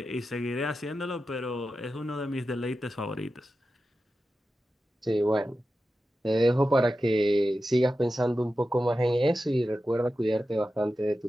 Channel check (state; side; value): normal; both; correlation 0.92